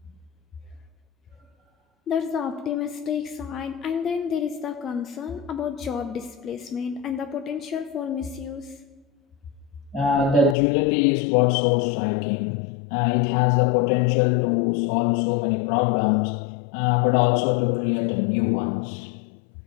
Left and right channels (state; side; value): drops out; right; at 10.6 s